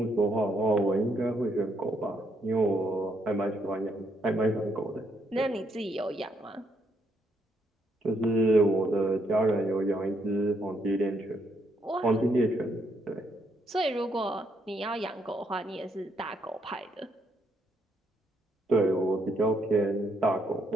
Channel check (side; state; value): both; normal; correlation 0.74